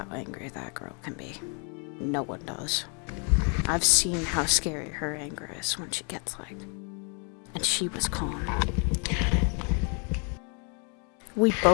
angry that girl can be. No one does. I've seen how scary her anger is when she gets like. And she was calm. We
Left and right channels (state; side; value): quieter; right; 38.1 dB